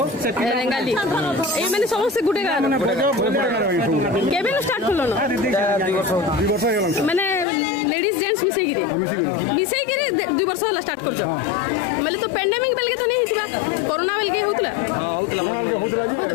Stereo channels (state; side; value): drops out; right; at 7.5 s